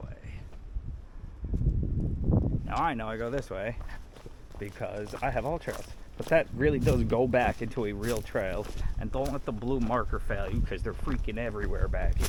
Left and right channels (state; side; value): identical; both; correlation 1.00